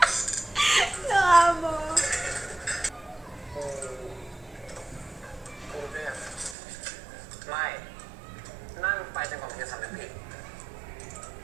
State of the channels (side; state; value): left; drops out; at 6.6 s